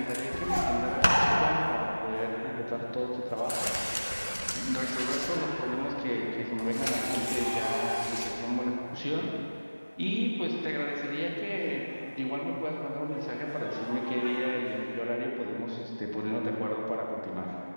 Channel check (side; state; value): both; inverted; correlation -1.00